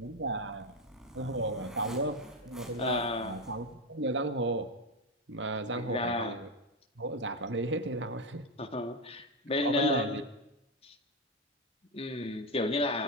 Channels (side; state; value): both; normal; correlation 0.10